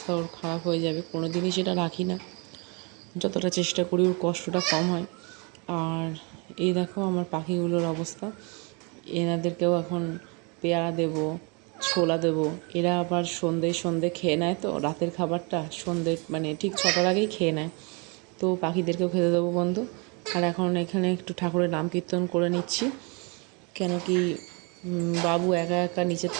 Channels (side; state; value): left; quieter; 31.9 dB